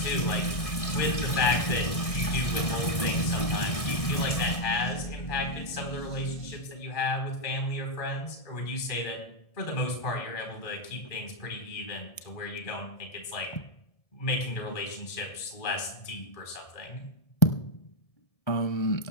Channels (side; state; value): right; late; 1.6 ms